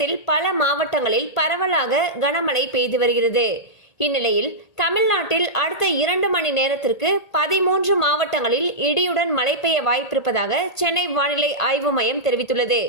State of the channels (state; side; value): late; right; 1.8 ms